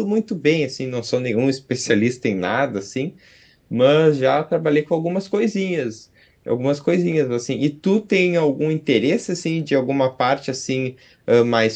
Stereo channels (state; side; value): identical; both; correlation 1.00